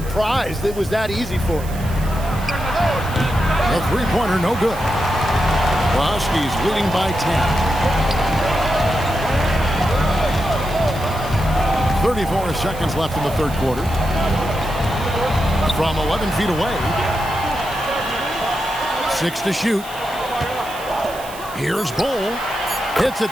it was that easy for him. A three-pointer, no good. The Huskies leading by 10. 34 seconds left in the third quarter. From 11 feet away. 6 to shoot. Here's Bull. Hits it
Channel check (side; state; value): right; noise; hiss, 17 dB below the sound